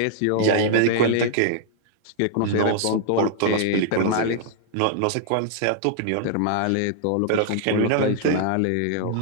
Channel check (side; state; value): both; different; correlation -0.01